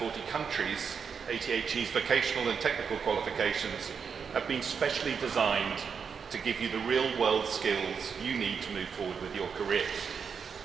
countries, ATHE's vocational and technical qualifications have been specially designed to give you the real-world skills you need to move forward with your careers.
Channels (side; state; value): left; quieter; 6.3 dB